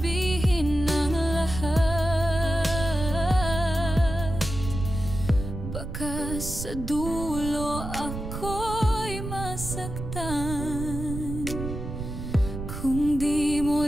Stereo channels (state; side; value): noise; right; rumble, 7 dB below the sound